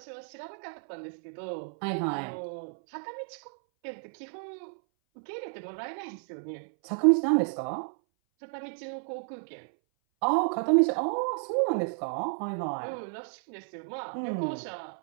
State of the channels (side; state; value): left; silent; 57 dB below the other